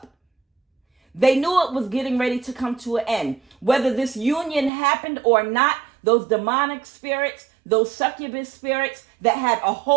They knew it was getting ready to come to an end. Whether this union happened or not, those demonic spirits, those succubus spirits that had a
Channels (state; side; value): drops out; left; at 4.7 s